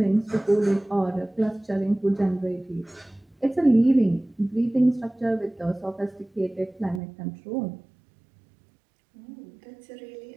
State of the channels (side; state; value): left; drops out; at 7.0 s